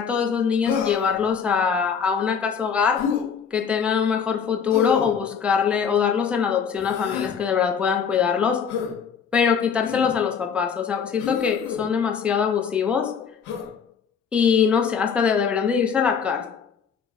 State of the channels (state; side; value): quieter; right; 6.7 dB